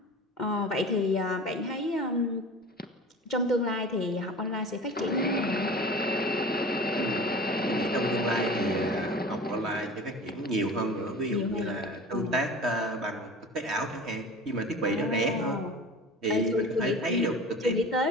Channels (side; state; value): both; normal; correlation 0.38